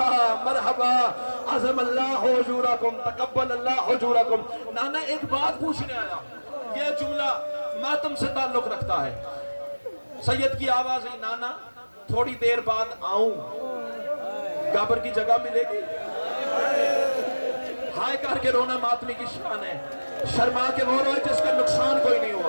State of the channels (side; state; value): both; inverted; correlation -1.00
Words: مرحبا، عظم اللہ حجورکم، تقبل اللہ حجورکم۔ نانا ایک بات پوچھنے آیا، یہ جملہ ماتم سے تعلق رکھتا ہے۔ سید کی آواز ہے، نانا تھوڑی دیر بعد آؤں، قبر کی جگہ ملے گی؟ ہائے کر کے رونا ماتمی کی شان ہے، شرما کے وہ روئے جس کا نقصان کوئی نہیں